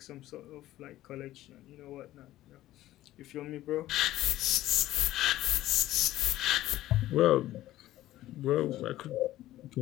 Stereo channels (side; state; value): right; quieter; 14.9 dB